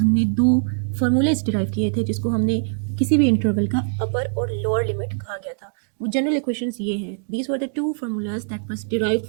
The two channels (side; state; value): left; silent; digital silence